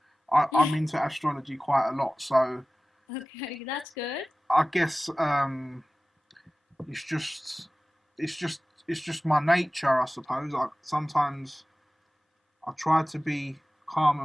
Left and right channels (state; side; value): normal; both; correlation 0.97